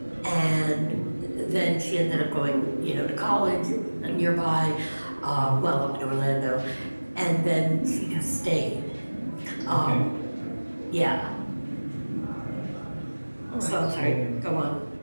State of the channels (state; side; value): inverted; both; correlation -1.00